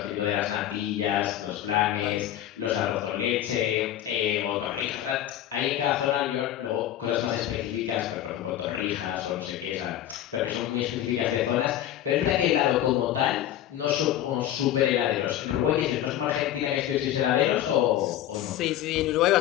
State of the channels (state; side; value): quieter; right; 12.1 dB